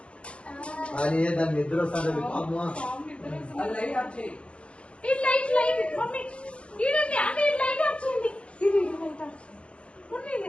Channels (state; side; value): late; right; 0.059 ms